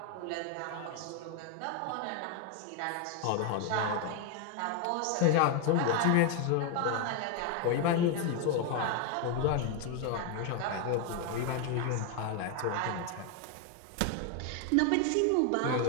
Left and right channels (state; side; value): different; both; correlation 0.01